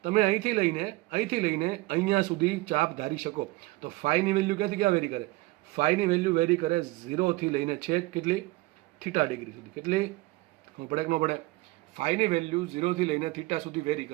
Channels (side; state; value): left; quieter; 21.1 dB